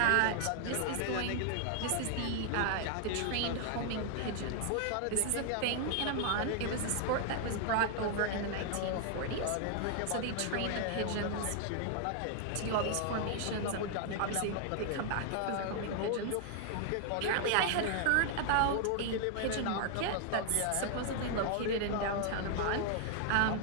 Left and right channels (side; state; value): both; different; correlation 0.00